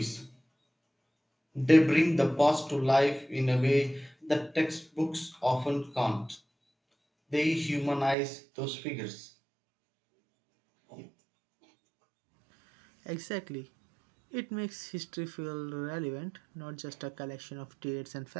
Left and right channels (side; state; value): left; drops out; at 8.2 s